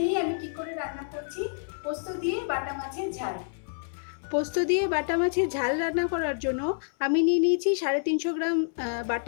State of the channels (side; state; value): right; silent; 59 dB below the other